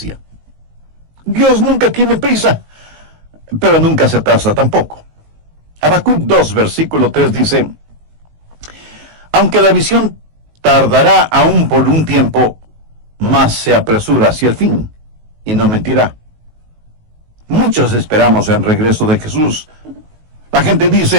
Dios nunca tiene prisa, pero nunca se atrasa tampoco. Habacuc 2, versículo 3 dice, aunque la visión tardará aún por un tiempo, mas se apresura hacia el fin, y no mentirá. Muchos esperamos el regreso de Jesús. La gente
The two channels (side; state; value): left; late; 19 ms